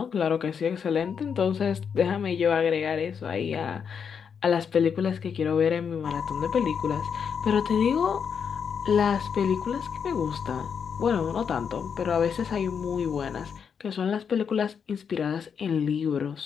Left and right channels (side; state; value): right; quieter; 6.9 dB